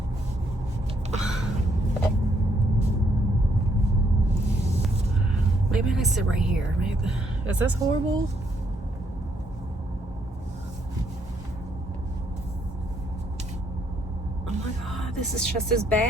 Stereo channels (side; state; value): both; normal; correlation 0.72